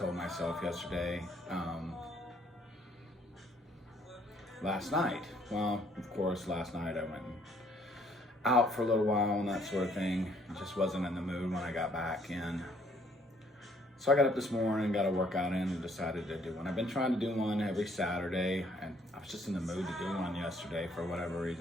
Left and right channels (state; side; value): normal; both; correlation 0.64